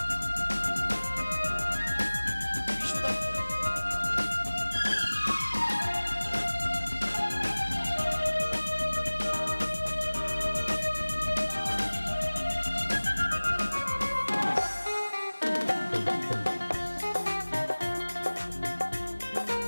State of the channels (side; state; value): both; inverted; correlation -1.00